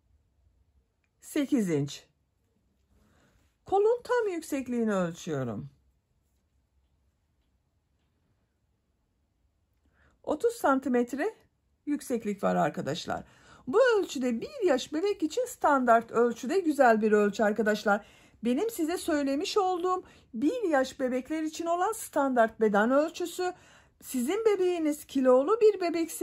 8 inç. Kolun tam yüksekliğini ölçüyorum. 30 santimetre yükseklik var arkadaşlar. Bu ölçüde 1 yaş bebek için standart ölçüde güzel bir ölçü arkadaşlar. Benim size söylemiş olduğum 1 yaş bebekler için olan standart beden ölçüsü, sizin bebeğiniz kilolu bir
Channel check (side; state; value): both; identical; correlation 1.00